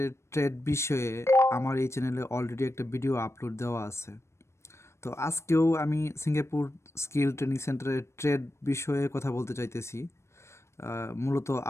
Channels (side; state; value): right; late; 0.13 ms